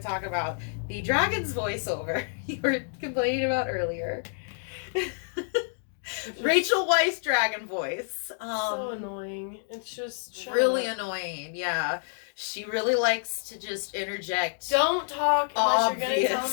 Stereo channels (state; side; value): silent; right; digital silence